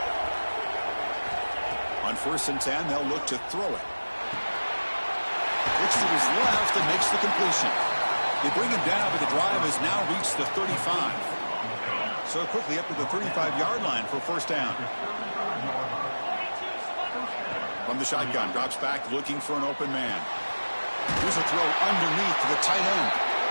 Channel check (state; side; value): inverted; both; correlation -1.00